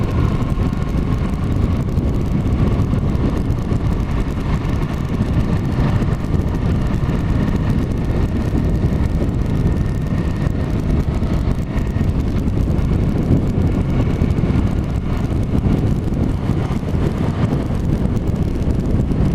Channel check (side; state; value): both; identical; correlation 1.00